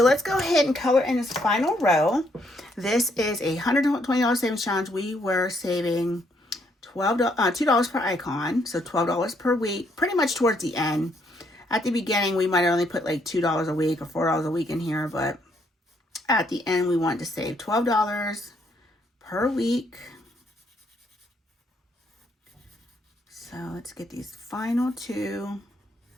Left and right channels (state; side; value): normal; both; correlation 0.71